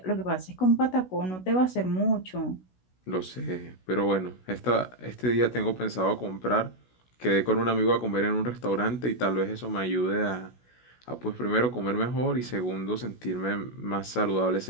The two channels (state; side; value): late; right; 16 ms